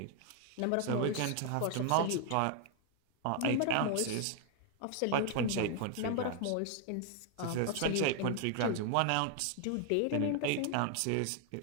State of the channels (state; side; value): different; both; correlation 0.00